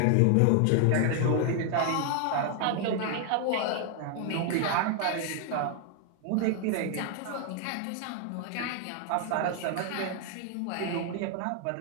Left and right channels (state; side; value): different; both; correlation 0.00